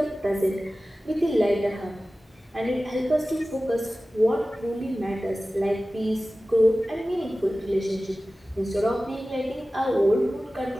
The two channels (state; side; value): normal; both; correlation 0.96